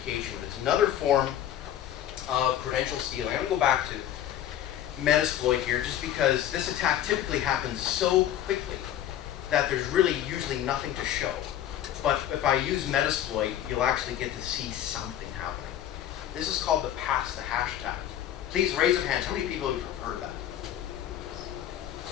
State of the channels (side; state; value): right; quieter; 11.4 dB